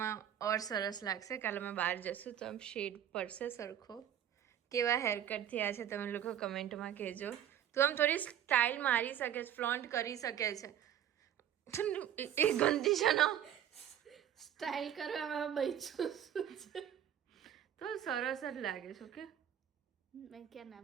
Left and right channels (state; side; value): quieter; left; 10.3 dB